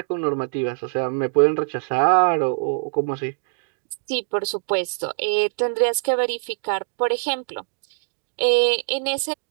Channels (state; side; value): silent; left; digital silence